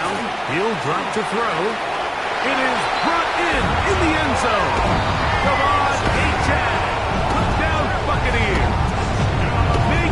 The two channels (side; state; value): both; identical; correlation 1.00